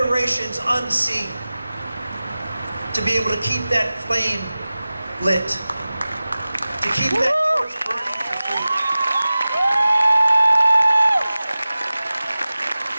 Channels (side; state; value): both; inverted; correlation -0.96